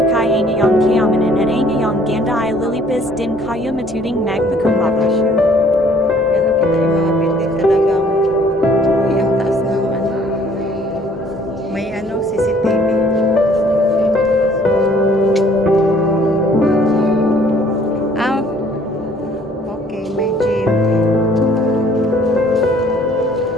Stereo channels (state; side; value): normal; both; correlation 0.58